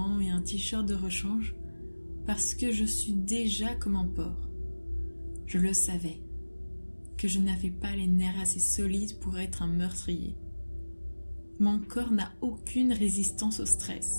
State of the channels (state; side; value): inverted; both; correlation -1.00